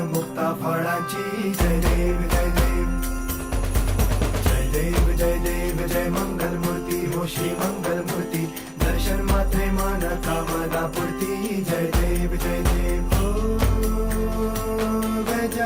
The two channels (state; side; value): identical; both; correlation 1.00